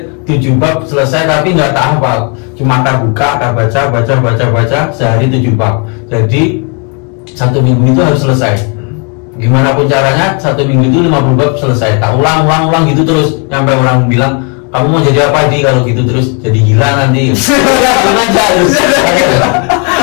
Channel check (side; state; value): right; quieter; 36.5 dB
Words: 7 bab selesai, tapi nggak tak hafal. Cuma tak buka, tak baca sehari 7 bab. Jadi 1 minggu itu harus selesai. Gimana pun caranya 1 minggu itu 50 bab selesai. Tak ulang gitu terus sampai orang bilang, kamu mau jadi apa di kalau gitu terus? Jadi gila nanti.